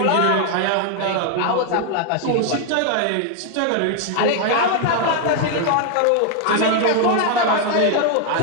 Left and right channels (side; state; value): both; different; correlation 0.00